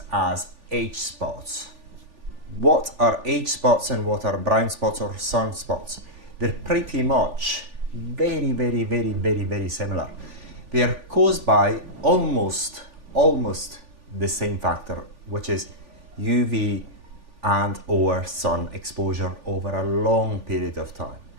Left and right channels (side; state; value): left; late; 3.4 ms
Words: as age spots. What are age spots and what are brown spots or sunspots? They're pretty much very similar. They are caused by almost the same factor, which is UV and or sun exposure over a long period of time.